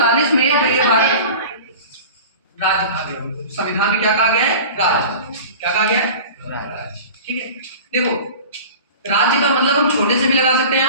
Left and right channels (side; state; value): both; inverted; correlation -0.38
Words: में जो ये भारत राज्य कहा गया, संविधान में क्या कहा गया है? राज्य। क्या कहा गया है? ठीक है, देखो, राज्य का मतलब हम छोटे से भी लगा सकते हैं